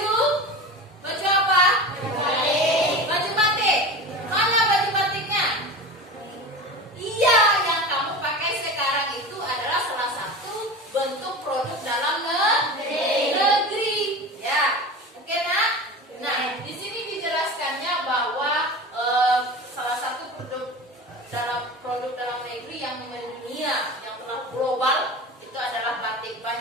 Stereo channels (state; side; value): normal; both; correlation 0.31